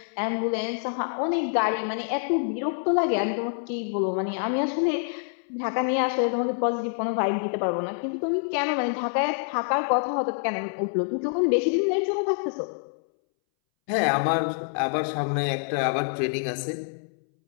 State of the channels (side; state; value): right; silent; 61 dB below the other